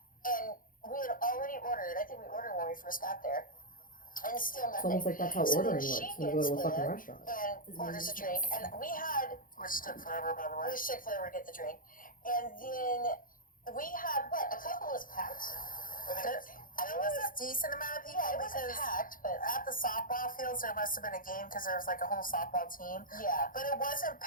and we had already ordered, I think we ordered when we first got there, and still It's nothing. almost like that's how So ordering then works she when you go to a gets fucking there restaurant. and orders a drink, and we had, Which took forever, by the way. we took forever to get the drink, and then we had, a couple was packed. There was a decent amount of people Yeah, it wasn't because packed, but at the softball fields there must have been a game because there was like a whole softball team. yeah. But it wasn't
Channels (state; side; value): late; right; 0.40 ms